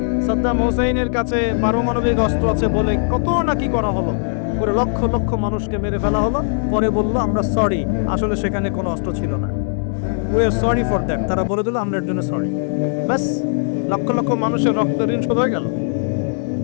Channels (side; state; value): right; silent; digital silence